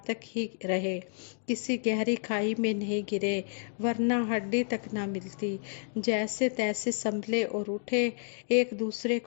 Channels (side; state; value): right; silent; 57 dB below the other